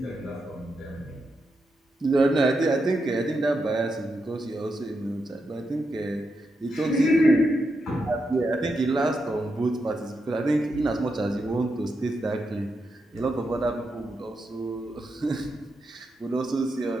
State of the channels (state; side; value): normal; both; correlation 0.85